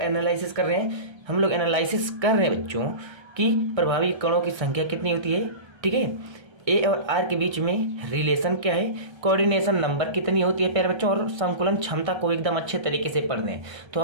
कर रहे हैं? हम लोग एनालिसिस कर रहे हैं बच्चों कि प्रभावी कणों की संख्या कितनी होती है। ठीक है, ए और आर के बीच में रिलेशन क्या है, कोऑर्डिनेशन नंबर कितनी होती है प्यारे बच्चों, और संकुलन क्षमता को एकदम अच्छे तरीके से पढ़ लें। तो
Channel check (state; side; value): late; left; 1.3 ms